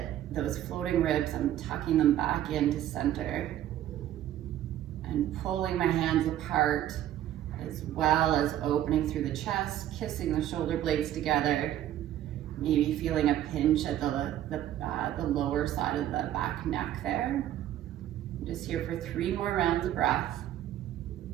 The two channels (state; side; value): quieter; left; 12.2 dB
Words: those floating ribs, I'm tucking them back into center and pulling my hands apart, as well as opening through the chest, kissing the shoulder blades together, maybe feeling a pinch at the lower side of the back neck there. I'm just here for 3 more rounds of breath.